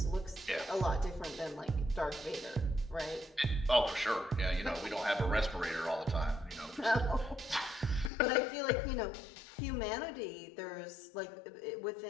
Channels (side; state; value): right; drops out; at 8.1 s